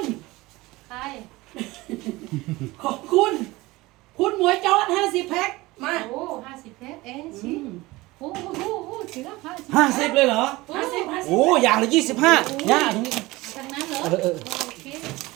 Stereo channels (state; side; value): quieter; left; 20.4 dB